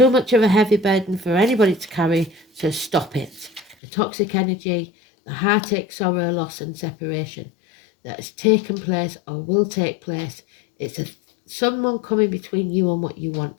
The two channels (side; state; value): right; drops out; at 3.8 s